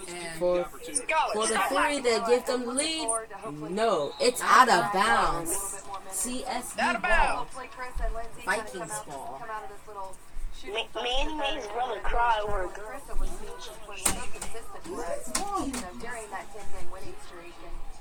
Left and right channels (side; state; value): both; identical; correlation 1.00